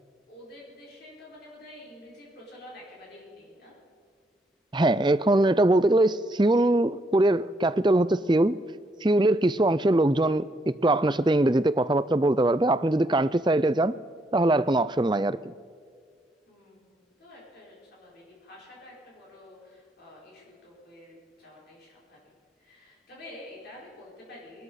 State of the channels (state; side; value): normal; both; correlation 0.73